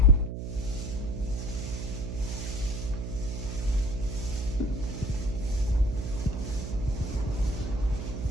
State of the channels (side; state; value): right; noise; hum, 5 dB below the sound